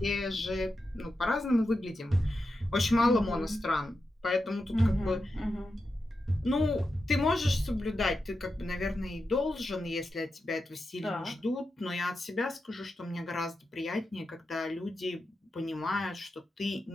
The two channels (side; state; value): both; normal; correlation 0.89